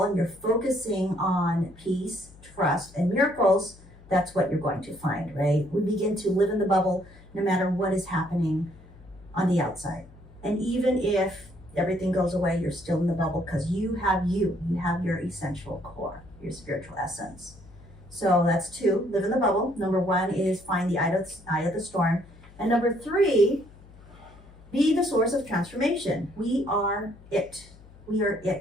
and you're focusing on peace, trust, and miracles, that's what you're going to find, right? We begin to live in the bubble no matter what is happening on the outside. And even if everything goes away, you're still in the bubble, because you have your essential core, your spiritual essence. So that's 2, live in the bubble. Number 1 is find the eye of the storm. And number 3, be the source of transformation. We are it. We are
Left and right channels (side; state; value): left; noise; hum, 22 dB below the sound